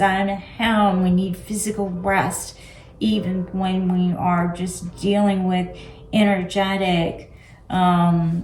and we need physical rest even when we are just dealing with energetic,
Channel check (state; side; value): identical; both; correlation 1.00